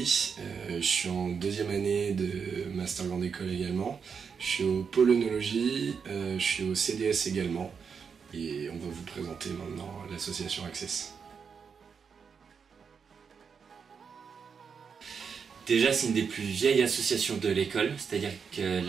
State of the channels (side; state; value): left; quieter; 6.2 dB